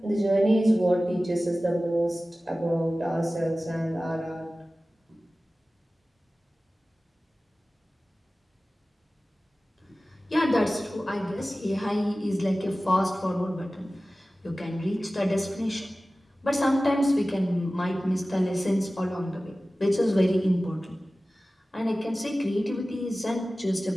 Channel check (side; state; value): both; normal; correlation 0.96